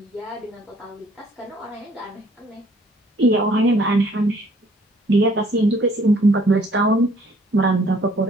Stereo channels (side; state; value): both; normal; correlation 0.60